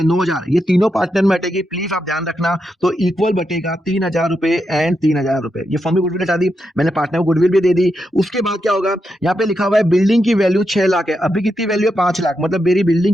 9,000, ये तीनों पार्टनर में हटेगी, प्लीज आप ध्यान रखना। तो इक्वल बटेगा 3,000 रुपए एंड 3,000 रुपए। ये फर्म की गुडविल हटा दी, मैंने पार्टनर को गुडविल भी दे दी। उसके बाद क्या होगा, यहाँ पे लिखा हुआ है बिल्डिंग की वैल्यू 6 लाख है, अभी कितनी वैल्यू है? 5 लाख। मतलब मेरी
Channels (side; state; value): both; normal; correlation 0.85